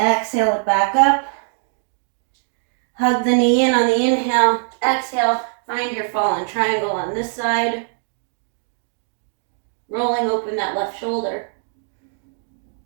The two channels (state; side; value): silent; left; digital silence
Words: it back up. Hug the knee in on the inhale. Exhale, find your fallen triangle on this side. Rolling open that left shoulder.